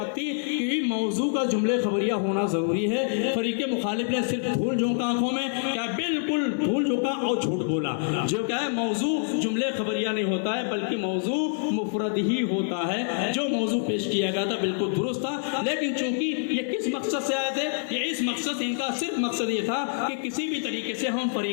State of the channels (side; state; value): right; silent; digital silence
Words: تھی کہ موضوع کا جملے خبریہ ہونا ضروری ہے۔ فریق مخالف نے صرف دھول جھونکا آنکھوں میں، کیا بالکل دھول جھونکا اور جھوٹ بولا۔ جو کیا ہے موضوع جملے خبریہ نہیں ہوتا ہے، بلکہ موضوع مفرد ہی ہوتا ہے۔ جو موضوع پیش کیا گیا تھا بالکل درست تھا، لیکن چونکہ یہ کس مقصد سے آئے تھے، یہ اس مقصد، ان کا صرف مقصد یہ تھا کہ کسی بھی طریقے سے ہم